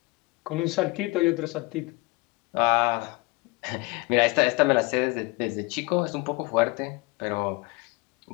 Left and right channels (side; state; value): right; quieter; 25.0 dB